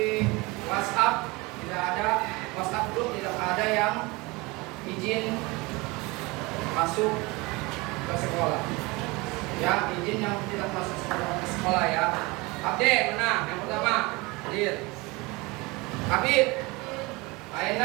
WhatsApp tidak ada, WhatsApp group tidak ada yang izin masuk ke sekolah. Ya, izin yang tidak masuk ke sekolah ya. Abde, mana? Yang pertama, hadir. Habib,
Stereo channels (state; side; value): quieter; left; 24.3 dB